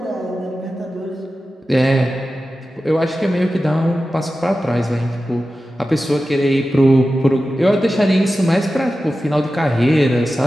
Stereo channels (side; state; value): both; normal; correlation 0.93